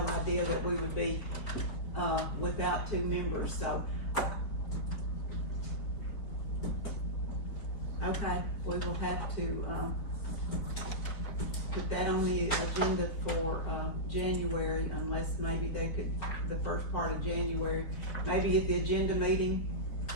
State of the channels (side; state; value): right; late; 4.6 ms